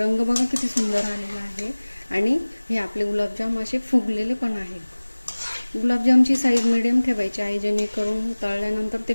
बघा किती सुंदर आलेला आहे आणि हे आपले गुलाबजाम असे फुगलेले पण आहे. गुलाबजामची साईज मिडियम ठेवायची आहे, जेणेकरून तळल्यानंतर ते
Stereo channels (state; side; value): inverted; both; correlation -1.00